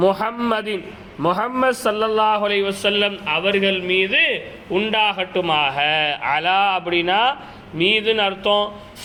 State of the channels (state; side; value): identical; both; correlation 1.00